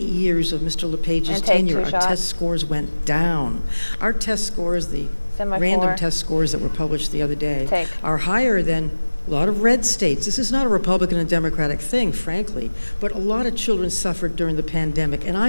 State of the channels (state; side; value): inverted; both; correlation -1.00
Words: of Mr. LePage's And take tenure, our two-shot. test scores went down. Our test scores, the Semi-4. random test scores that were published the other day, Take. are higher than a lot of red states. This is not a Republican and Democratic thing, frankly, but a lot of children suffered during the pandemic, and